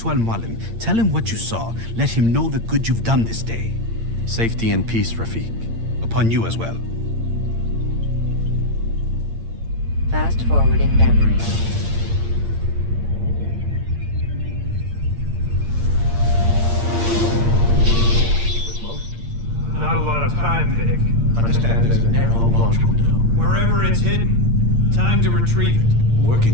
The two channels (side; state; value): left; late; 8.7 ms